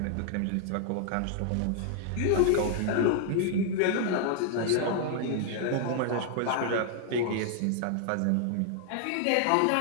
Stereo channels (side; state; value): both; different; correlation -0.01